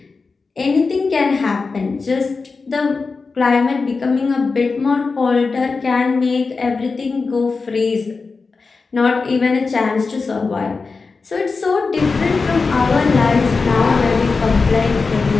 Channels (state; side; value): quieter; right; 4.3 dB